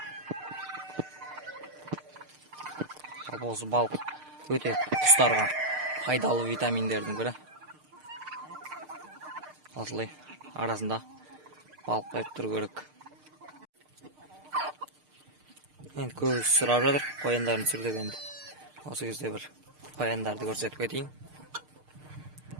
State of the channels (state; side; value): late; left; 6.6 ms